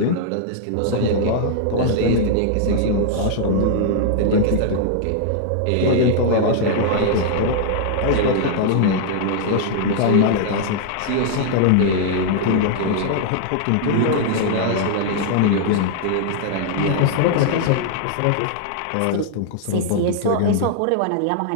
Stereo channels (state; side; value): different; both; correlation -0.01